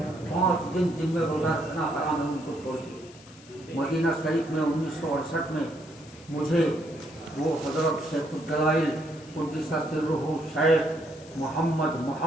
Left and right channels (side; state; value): left; noise; hiss, 22 dB below the sound